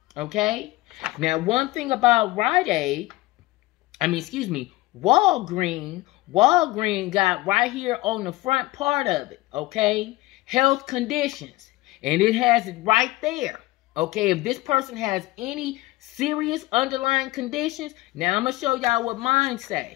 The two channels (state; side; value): quieter; right; 19.6 dB